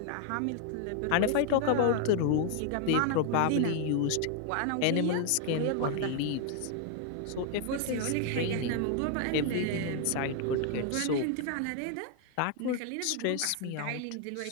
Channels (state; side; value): different; both; correlation 0.00